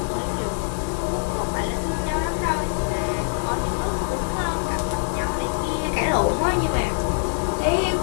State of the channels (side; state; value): right; silent; 63 dB below the other